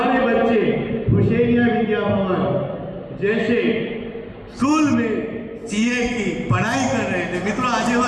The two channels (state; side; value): identical; both; correlation 1.00